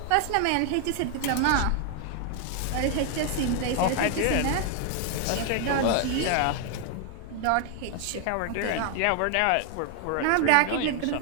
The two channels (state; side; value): different; both; correlation 0.00